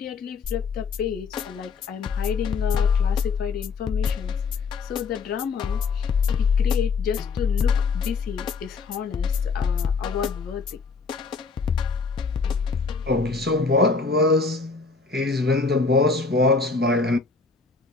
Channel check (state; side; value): quieter; right; 4.5 dB